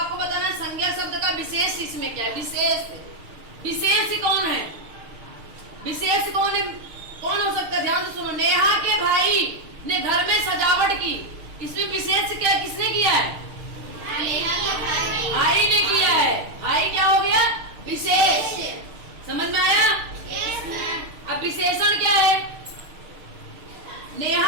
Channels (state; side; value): late; left; 6.6 ms